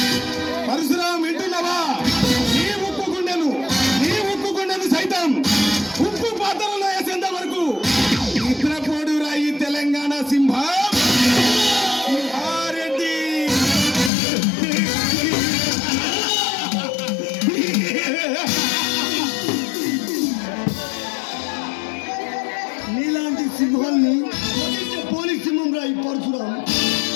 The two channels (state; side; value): drops out; right; at 14.1 s